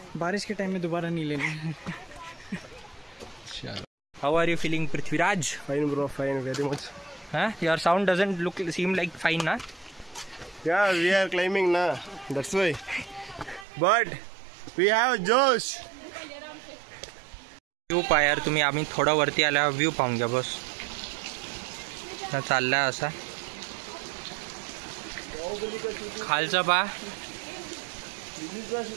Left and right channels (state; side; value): drops out; left; at 13.7 s